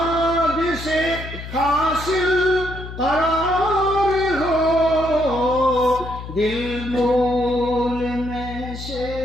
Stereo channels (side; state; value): left; noise; hum, 10 dB below the sound